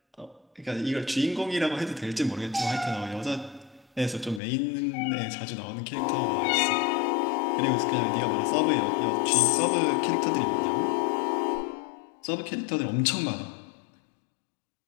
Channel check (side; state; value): right; drops out; at 4.4 s